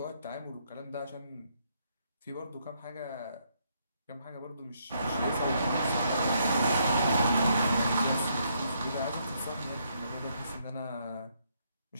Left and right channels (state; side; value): inverted; both; correlation -0.73